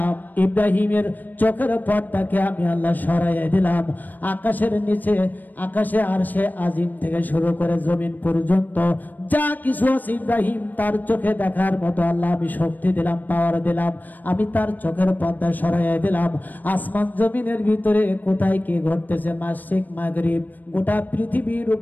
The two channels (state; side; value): late; right; 0.087 ms